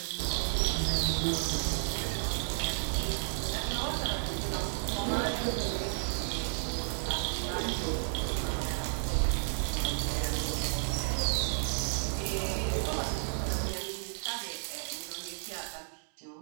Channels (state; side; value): silent; left; digital silence